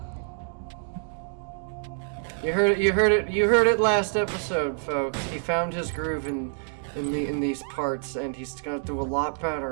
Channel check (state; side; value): silent; left; 60 dB below the other